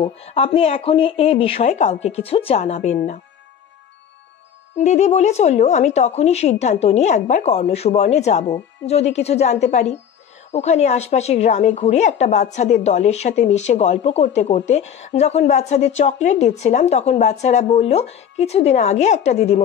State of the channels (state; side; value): quieter; right; 8.5 dB